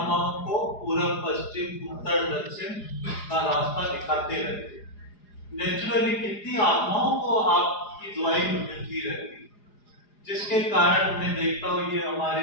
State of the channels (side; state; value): right; late; 4.9 ms